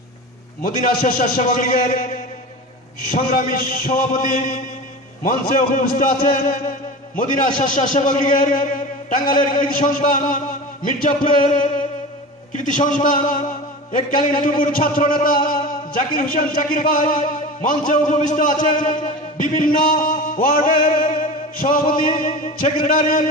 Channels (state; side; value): normal; both; correlation 0.31